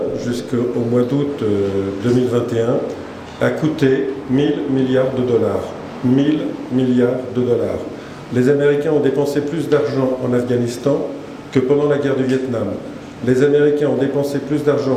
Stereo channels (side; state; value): both; identical; correlation 1.00